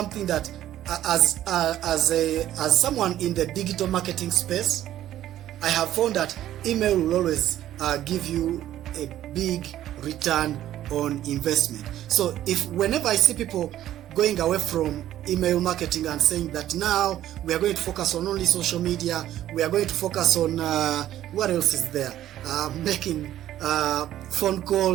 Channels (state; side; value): quieter; left; 12.6 dB